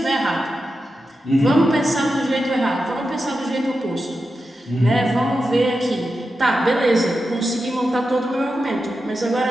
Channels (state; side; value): normal; both; correlation 0.90